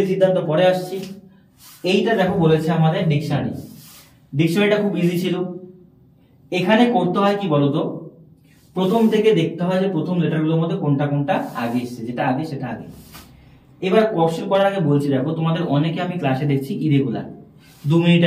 সিদ্ধান্ত পরে আসছি। এইটা দেখো বলেছে আমাদের ডিকশনারি, ডিকশনারিটা খুব ইজি ছিল। এখানে করতে হয় কি বলতো, প্রথম থেকে দেখতে হয় যে প্রথম লেটারগুলোর মধ্যে কোনটা কোনটা আগে এসছে, যেটা আগে সেটা আগে। এবার কোশ্চেন করার আগে বলছি দেখো তোমাদের অনেকে আমি ক্লাসে দেখছি ইরেগুলার, 2 মিনিট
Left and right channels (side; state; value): both; identical; correlation 1.00